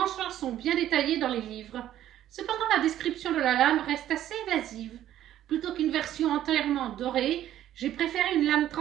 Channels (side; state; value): left; quieter; 12.1 dB